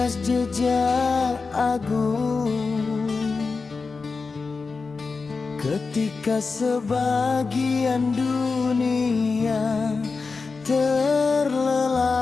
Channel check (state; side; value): quieter; right; 4.4 dB